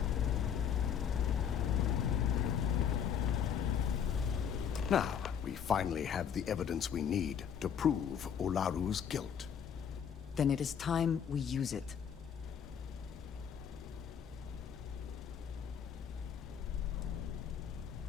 Now, we finally have the evidence we need to prove Ularu's guilt. Then it is time we use it.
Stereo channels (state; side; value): quieter; right; 8.0 dB